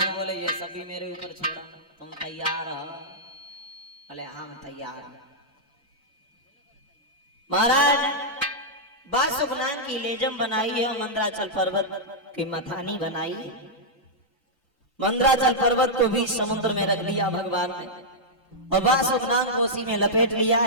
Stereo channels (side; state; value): both; normal; correlation -0.08